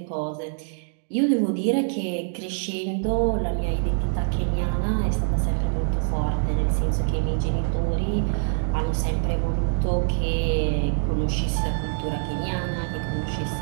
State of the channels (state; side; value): silent; left; digital silence